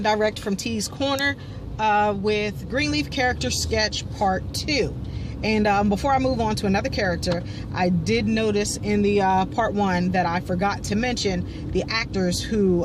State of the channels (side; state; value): both; identical; correlation 1.00